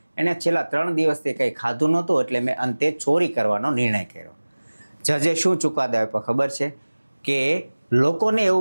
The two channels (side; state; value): both; inverted; correlation -1.00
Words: એણે છેલ્લા 3 દિવસથી કંઈ ખાધું નહોતું, એટલે મેં અંતે ચોરી કરવાનો નિર્ણય કર્યો. જજે શું ચુકાદો આપ્યો ખબર છે? કે લોકોને